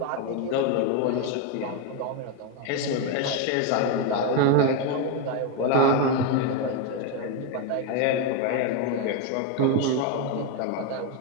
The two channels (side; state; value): both; different; correlation 0.02